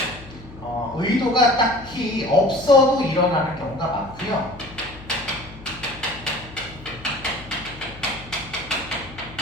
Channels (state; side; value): noise; left; hum, 17 dB below the sound